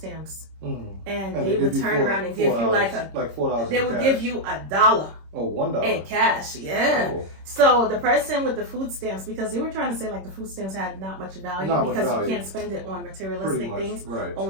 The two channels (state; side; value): late; left; 26 ms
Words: and they would turn around and give you like $4. they would give you $1 Oh, $1 in cash. Yeah. Oh. So the person with the food stamps, because they were trying to say like the food stamps had not much value because you can't spend it on materialistic things, right.